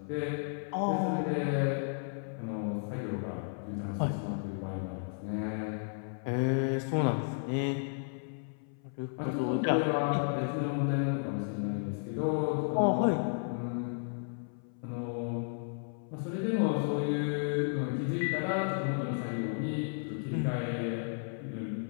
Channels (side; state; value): right; silent; 56 dB below the other